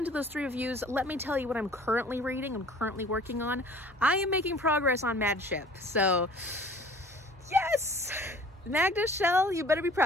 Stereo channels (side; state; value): both; normal; correlation 0.50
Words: those 3 reviews, let me tell you what I'm currently reading, I'm currently working on. I am making progress on Mad Ship. So yes! Magda Shell, you better be